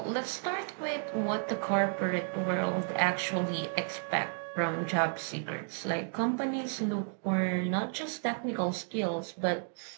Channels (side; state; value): left; silent; 56 dB below the other